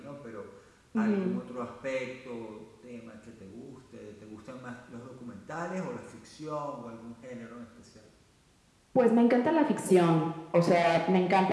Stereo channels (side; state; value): both; identical; correlation 1.00